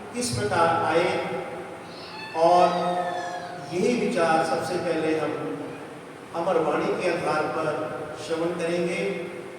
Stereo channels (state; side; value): identical; both; correlation 1.00